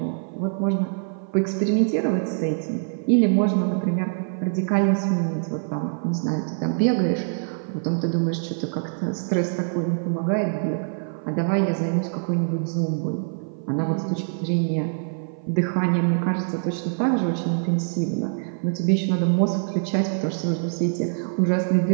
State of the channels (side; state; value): left; silent; 55 dB below the other